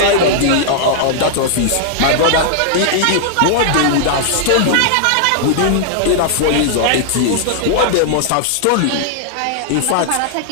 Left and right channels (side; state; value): both; different; correlation -0.01